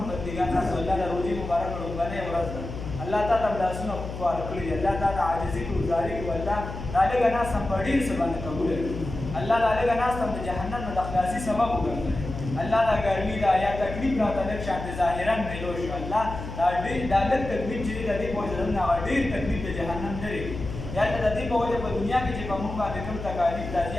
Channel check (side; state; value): left; noise; hum, 8 dB below the sound